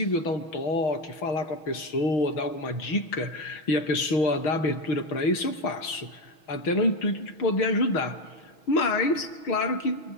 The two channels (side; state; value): right; late; 6.3 ms